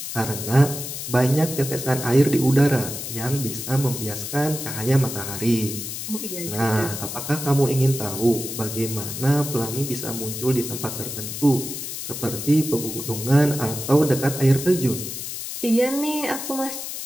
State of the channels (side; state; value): left; noise; hiss, 7 dB below the sound